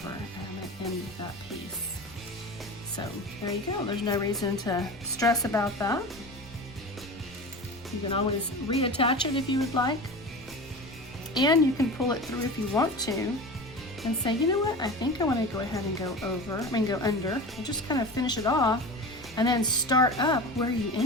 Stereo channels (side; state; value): left; noise; rumble, 23 dB below the sound